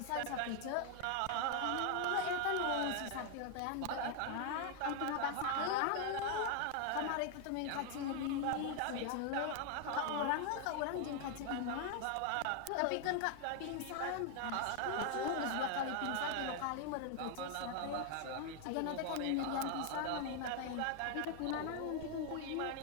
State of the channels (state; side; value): different; both; correlation 0.00